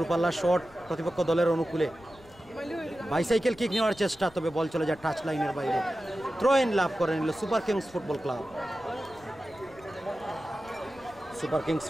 শট প্রতিপক্ষ দলের অনুকূলে, বাইসাইকেল কিক নেওয়ার চেষ্টা, তবে বল চলে যায় টাচ লাইনের বাইরে। থ্রো-ইন লাভ করে নিল super kings football club. Super kings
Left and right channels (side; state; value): left; noise; rumble, 24 dB below the sound